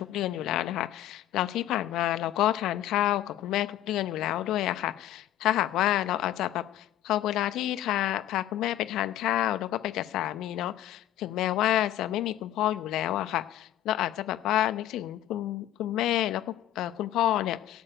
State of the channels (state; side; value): quieter; right; 13.0 dB